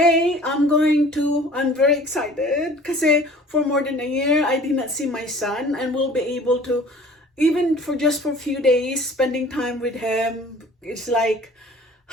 I'm very excited kasi for more than a year, I did not see my son and will be able to, even for just for a few days, spending time with him. It's like,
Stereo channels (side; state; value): both; normal; correlation 0.48